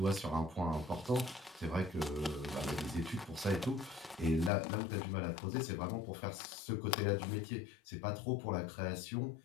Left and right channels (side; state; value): right; drops out; at 4.5 s